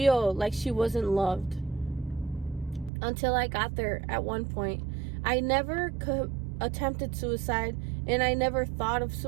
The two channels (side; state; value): left; drops out; at 2.9 s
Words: like she wasn't loved? Until I got there at one point. I never attempted suicide, and I never thought of